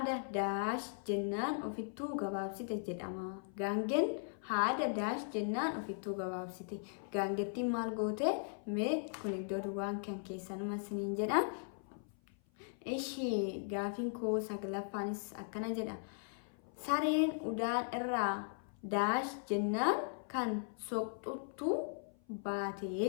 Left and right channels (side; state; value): right; silent; 52 dB below the other